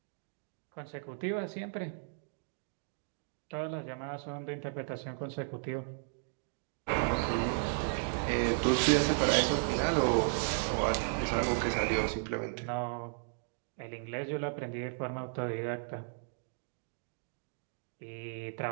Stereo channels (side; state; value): left; silent; digital silence